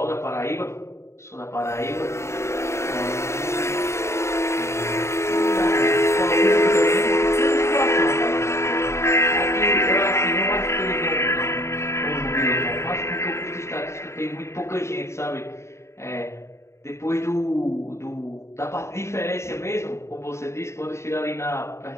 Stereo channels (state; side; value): late; right; 0.13 ms